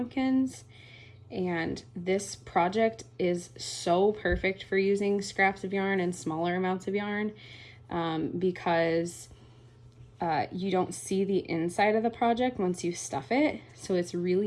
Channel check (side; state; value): both; identical; correlation 1.00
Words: And this project is so perfect for using scraps of yarn and smaller amounts of yarn because you don't see the inside of the project once you stuff it. So it's